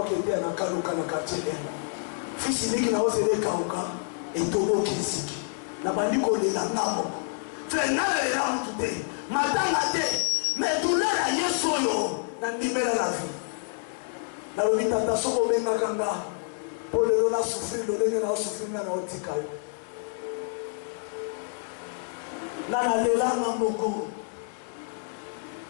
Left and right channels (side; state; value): right; silent; digital silence